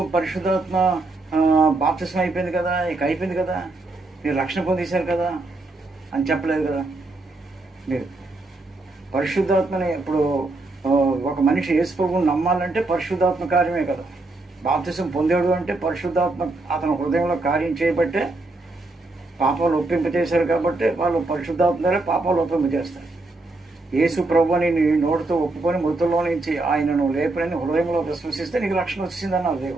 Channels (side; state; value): left; quieter; 3.1 dB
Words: పరిశుద్ధాత్మ బాప్తిసం అయిపోయింది కదా, ఇక అయిపోయింది కదా, మీరు రక్షణ పొందేశారు కదా అని చెప్పలేదు కదా. మీరు పరిశుద్ధాత్మని ఇప్పుడు ఒక మనిషి యేసు ప్రభువుని నమ్మాలంటే పరిశుద్ధాత్మ కార్యమే కదా. బాప్తిసం పొందాడు అంటే పరిశుద్ధాత్మ అతని హృదయంలో కార్యం చేయబట్టే పాపాలు ఒప్పింపజేశారు. కాబట్టి వాళ్ళు పరిశుద్ధాత్మ ద్వారా పాపాలు ఒప్పింపజేస్తారు. యేసు ప్రభువుని నీ నోటితో ఒప్పుకొని మృతుల్లో నుంచి ఆయనను లేపనని హృదయంలో విశ్వసిస్తే నీకు రక్షణ వచ్చిందన్నారు